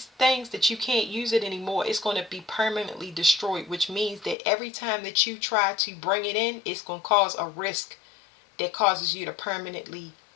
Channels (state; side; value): drops out; right; at 4.4 s